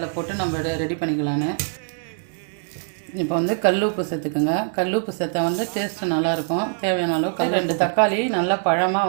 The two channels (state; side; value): silent; left; digital silence